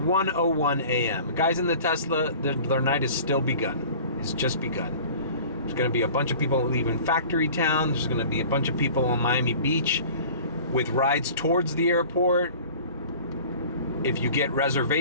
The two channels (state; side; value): inverted; both; correlation -0.44